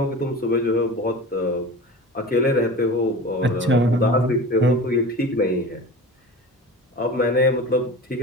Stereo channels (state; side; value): normal; both; correlation 0.34